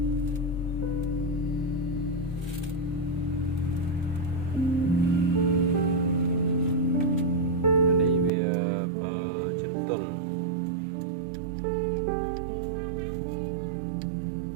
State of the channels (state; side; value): drops out; left; at 8.3 s